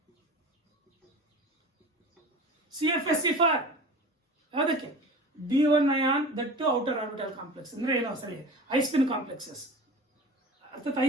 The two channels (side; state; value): both; normal; correlation 0.36